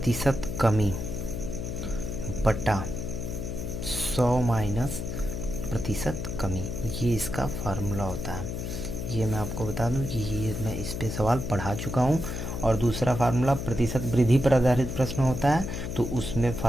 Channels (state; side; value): noise; left; hum, 4 dB below the sound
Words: कमी बटा 100 माइनस प्रतिशत कमी, ये इसका फार्मूला होता है। ये मैं आपको बता दूं कि ये मैं इस पे सवाल पढ़ा चुका हूँ। और दूसरा फार्मूला प्रतिशत वृद्धि पर आधारित प्रश्न होता है तो उसमें